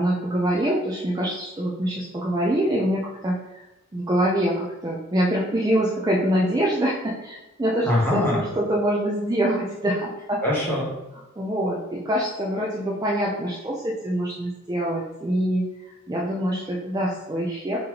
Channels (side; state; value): both; normal; correlation 0.64